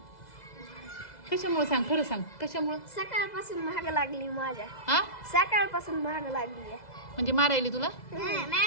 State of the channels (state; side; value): late; right; 2.0 ms